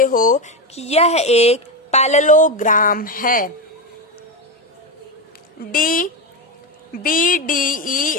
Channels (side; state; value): both; normal; correlation 0.13